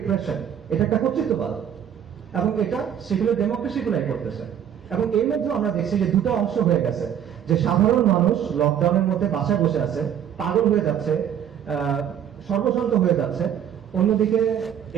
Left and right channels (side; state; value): left; quieter; 9.4 dB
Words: এটা একটা কর্তৃত্ববাদ, এবং এটা সেকুলার ডেমোক্রেসি গুলাই করতেছে। এবং এর মধ্যে আমরা দেখছি যে দুটো অংশ হয়ে গেছে, যে সাধারণ মানুষ লকডাউনের মধ্যে বাসায় বসে আছে, পাগল হয়ে যাচ্ছে, সর্বশান্ত হয়ে যাচ্ছে। অন্যদিকে